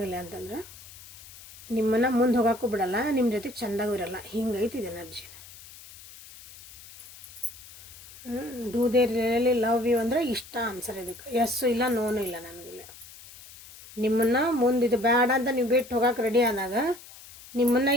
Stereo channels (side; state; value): left; noise; hiss, 18 dB below the sound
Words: ಅಂತಂದ್ರೆ ನಿಮ್ಮನ್ನು ಮುಂದೆ ಹೋಗೋಕ್ಕೂ ಬಿಡಲ್ಲ, ನಿಮ್ಮ ಜೊತೆಗೆ ಚೆಂದಾಗೂ ಇರಲ್ಲ, ಹಿಂಗೈತಿ ಇದು energy. Do they really love you ಅಂದರೆ ಇಷ್ಟ ಆನ್ಸರ್ ಇದಕ್ಕೆ, ಎಸ್ಸು ಇಲ್ಲ ನೋನು ಇಲ್ಲ ನನಗಿಲ್ಲ. ನಿಮ್ಮನ್ನು ಮುಂದೆ ಇದು ಬೇಡ ಅಂತ ನೀವು ಬಿಟ್ಟು ಹೋಗೋಕೆ ರೆಡಿ ಆದಾಗ, ನಿಮ್ಮನ್ನು